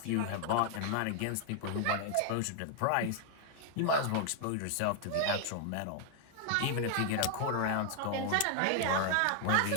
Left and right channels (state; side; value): different; both; correlation 0.00